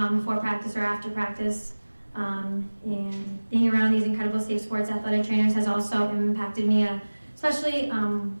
before practice or after practice. And being around these incredible Safe Sports athletic trainers has also impacted me, especially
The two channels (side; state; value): both; inverted; correlation -1.00